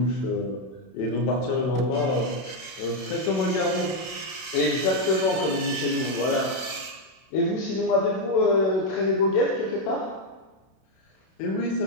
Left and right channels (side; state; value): right; late; 31 ms